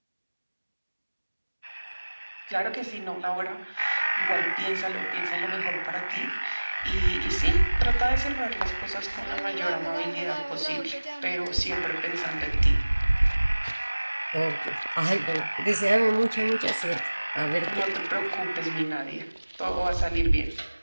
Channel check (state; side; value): inverted; both; correlation -1.00